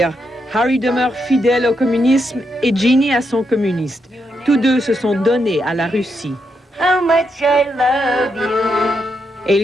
Harry demeure fidèle au communisme et Jeannie à son communiste. Tous deux se sont donnés à la Russie. How much I love you.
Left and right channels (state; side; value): normal; both; correlation 0.81